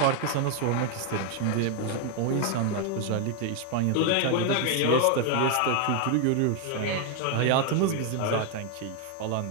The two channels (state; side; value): different; both; correlation 0.00